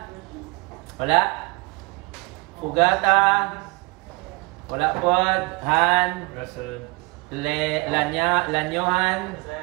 wala. Fugata, wala po. Han, Lanyohan,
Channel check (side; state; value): left; quieter; 27.4 dB